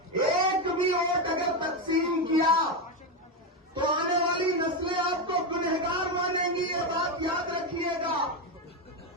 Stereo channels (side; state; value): both; normal; correlation 0.10